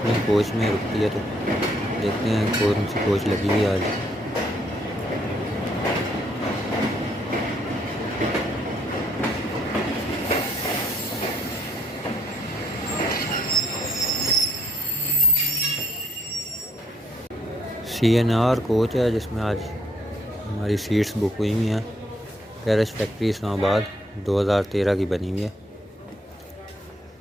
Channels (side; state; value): both; normal; correlation 0.69